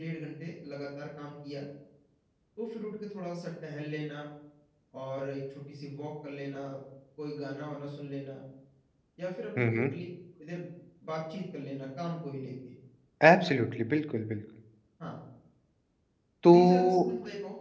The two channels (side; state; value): both; identical; correlation 1.00